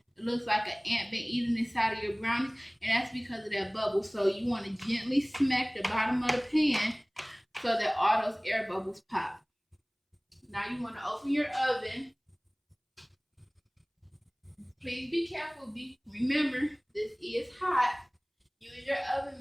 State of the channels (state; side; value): identical; both; correlation 1.00